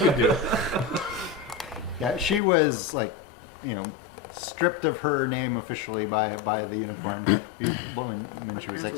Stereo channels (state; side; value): drops out; right; at 2.4 s